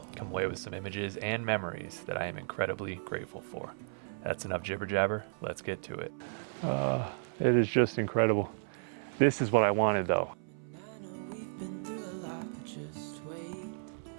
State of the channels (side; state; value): left; silent; 55 dB below the other